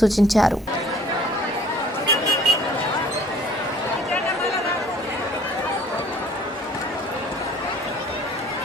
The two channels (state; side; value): normal; both; correlation 0.53